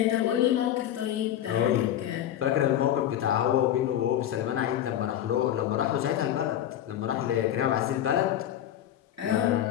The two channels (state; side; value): quieter; right; 11.3 dB